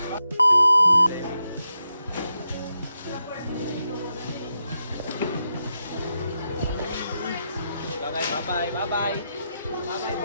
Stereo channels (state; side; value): inverted; both; correlation -0.86